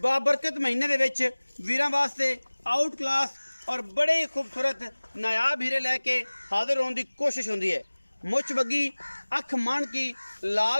बाबरकत महीने दे विच वीरां वास्ते आउट क्लास और बड़े ही खूबसूरत नायाब हीरे लैके हाजिर होने की कोशिश होंदी है। मुछ बग्गी अख मान की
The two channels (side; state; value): both; inverted; correlation -1.00